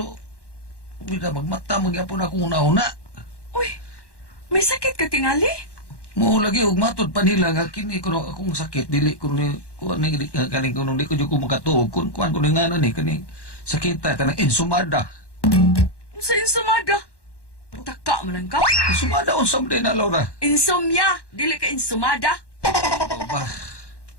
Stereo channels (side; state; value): right; late; 1.1 ms